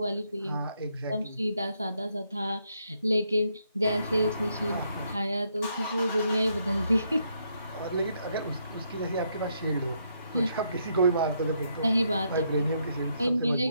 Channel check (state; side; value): inverted; both; correlation -0.75